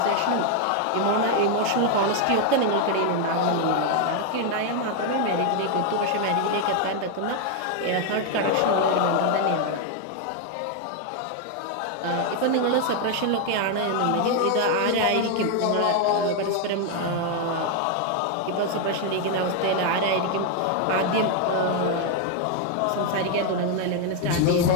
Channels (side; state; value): both; different; correlation 0.01